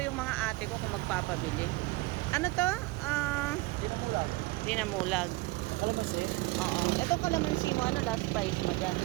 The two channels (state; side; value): quieter; left; 21.3 dB